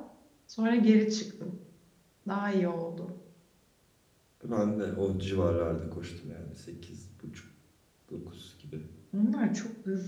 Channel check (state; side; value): identical; both; correlation 1.00